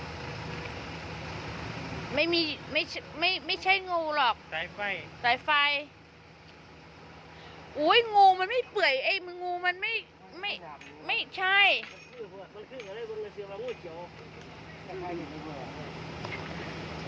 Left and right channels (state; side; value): identical; both; correlation 1.00